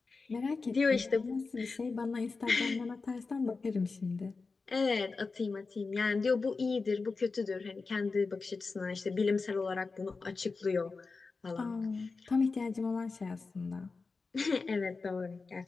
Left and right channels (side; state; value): right; quieter; 4.2 dB